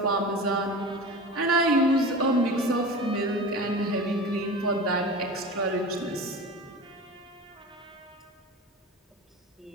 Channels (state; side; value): normal; both; correlation 0.32